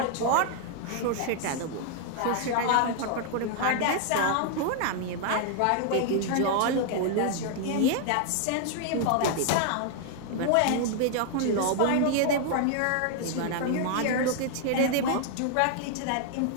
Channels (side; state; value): both; different; correlation 0.00